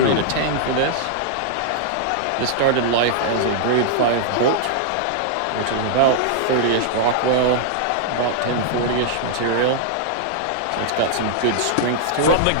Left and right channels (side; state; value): both; different; correlation -0.01